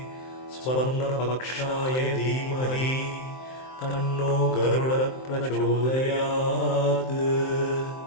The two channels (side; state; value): right; late; 23 ms